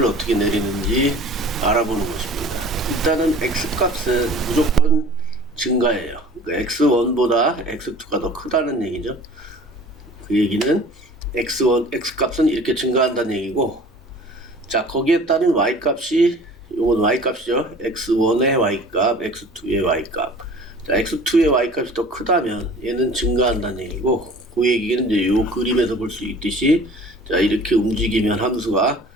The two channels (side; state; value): both; normal; correlation 0.46